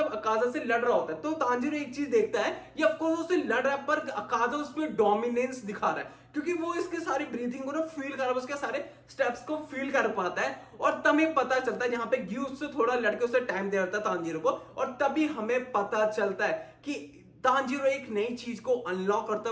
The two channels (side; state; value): both; identical; correlation 1.00